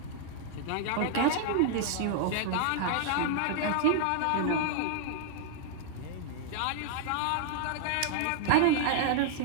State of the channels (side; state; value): both; different; correlation -0.01